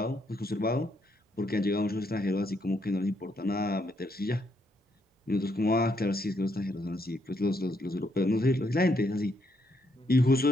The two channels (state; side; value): normal; both; correlation 0.75